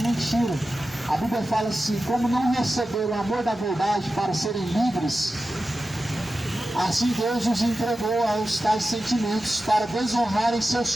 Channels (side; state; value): both; normal; correlation 0.93